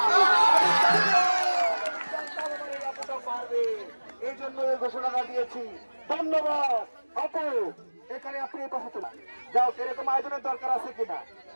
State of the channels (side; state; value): both; inverted; correlation -1.00